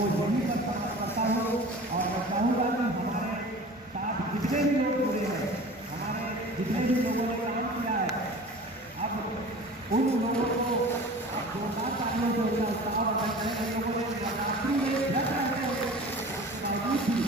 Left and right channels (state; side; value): normal; both; correlation 0.40